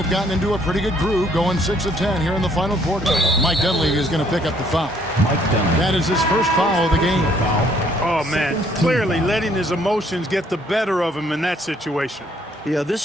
gotten into a pretty good groove, going 6 of 10 here in the final quarter. Mike Dunleavy is going to pick up the foul. That is his first foul of the game. Oh, man, clearly letting his emotions get the better of him in that situation. Yeah,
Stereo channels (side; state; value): both; normal; correlation 0.65